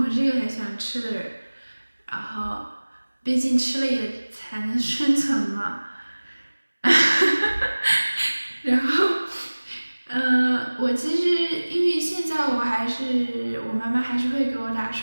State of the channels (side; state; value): both; inverted; correlation -1.00